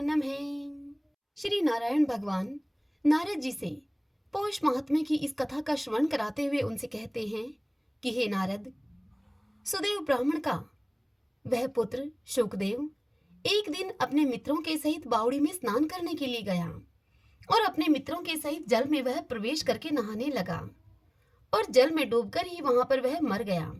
नमः। श्री नारायण भगवान नारद जी से पौष महात्म्य की इस कथा का श्रवण कराते हुए उनसे कहते हैं कि हे नारद, सुदेव ब्राह्मण का वह पुत्र शुकदेव एक दिन अपने मित्रों के सहित बावड़ी में स्नान करने के लिए गया और अपने मित्रों के सहित जल में वह प्रवेश करके नहाने लगा और जल में डूबकर ही वहां पर वह मर गया।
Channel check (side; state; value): both; identical; correlation 1.00